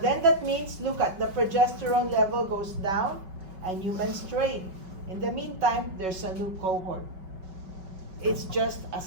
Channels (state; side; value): late; left; 5.3 ms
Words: that means, look at the progesterone level goes down and you menstruate. In the meantime, there's a new cohort. It's just a